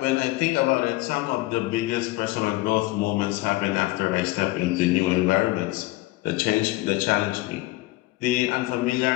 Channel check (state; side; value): quieter; right; 19.6 dB